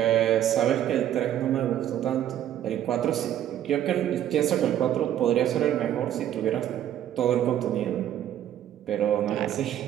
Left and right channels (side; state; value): left; quieter; 11.3 dB